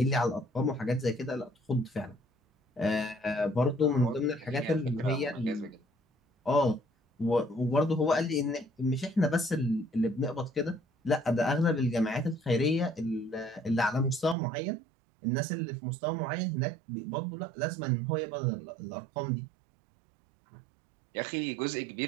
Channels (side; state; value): left; drops out; at 14.4 s